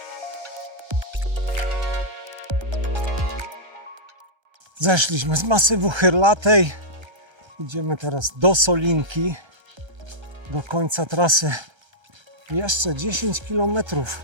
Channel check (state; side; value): late; left; 1.3 ms